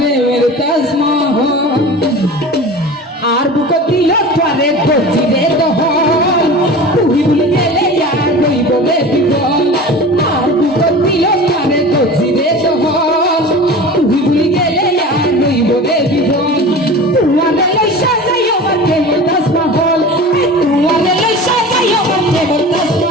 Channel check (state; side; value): normal; both; correlation 0.36